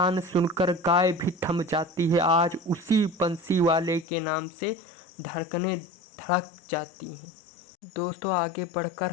सुनकर गाय भी थम जाती है। आज उसी बंसी वाले के नाम से धड़कनें धड़क जाती हैं। दोस्तों, आगे बढ़कर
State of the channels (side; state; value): right; drops out; at 4.0 s